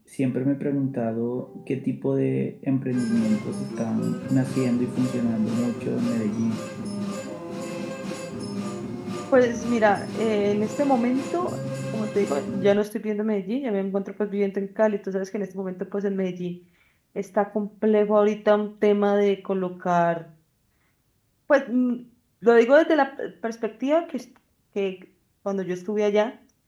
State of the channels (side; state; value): both; identical; correlation 1.00